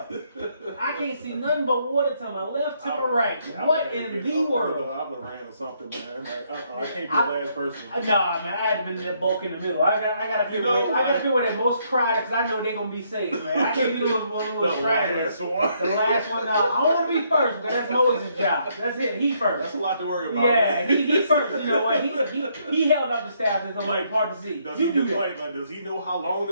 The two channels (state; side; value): inverted; both; correlation -0.72